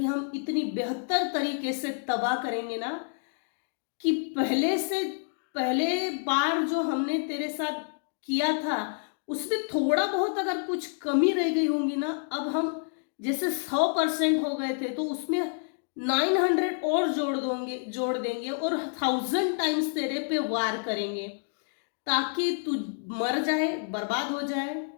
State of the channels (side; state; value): right; silent; 59 dB below the other